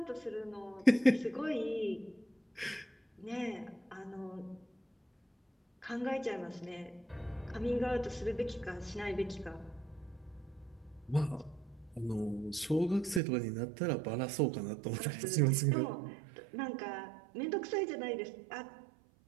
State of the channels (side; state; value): left; drops out; at 13.2 s